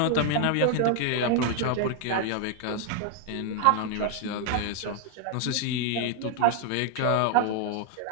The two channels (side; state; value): both; different; correlation 0.00